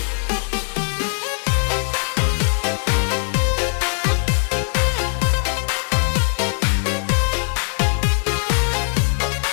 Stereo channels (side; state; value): right; silent; 59 dB below the other